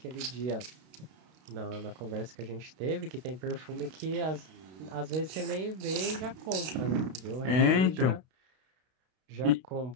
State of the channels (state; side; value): late; left; 32 ms